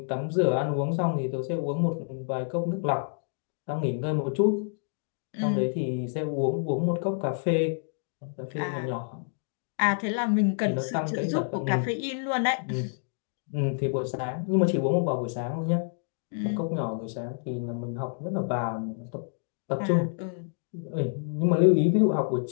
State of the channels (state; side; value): silent; right; digital silence